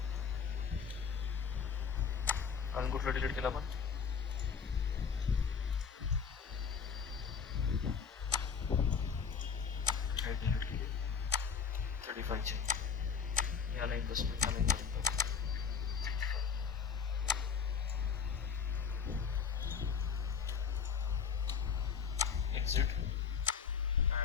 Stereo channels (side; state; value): right; quieter; 6.5 dB